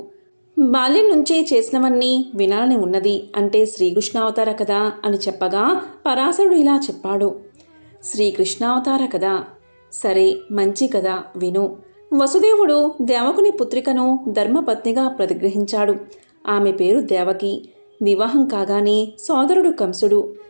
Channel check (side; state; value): both; inverted; correlation -1.00